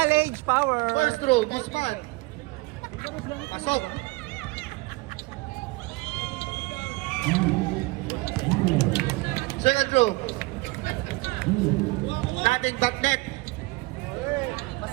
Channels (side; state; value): left; quieter; 23.5 dB